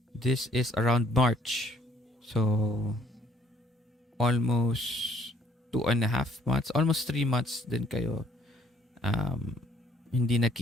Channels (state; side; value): normal; both; correlation 0.63